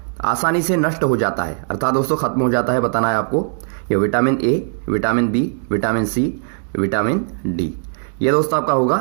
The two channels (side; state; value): left; silent; digital silence